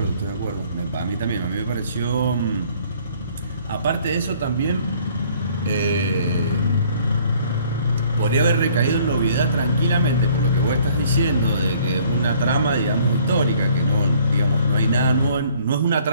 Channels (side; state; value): both; inverted; correlation -0.58